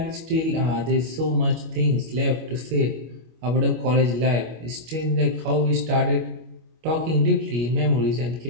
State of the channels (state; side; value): late; left; 25 ms